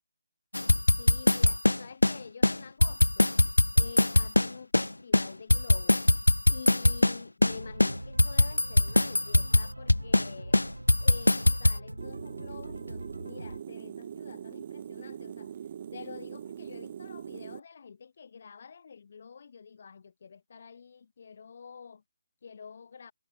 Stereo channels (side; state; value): both; inverted; correlation -0.99